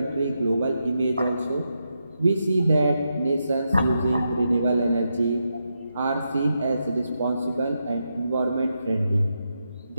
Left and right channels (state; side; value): inverted; both; correlation -0.85